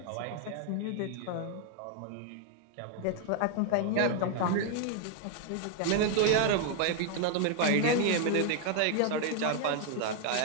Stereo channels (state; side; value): different; both; correlation 0.00